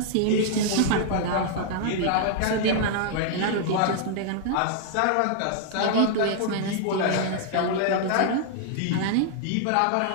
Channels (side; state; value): both; different; correlation -0.01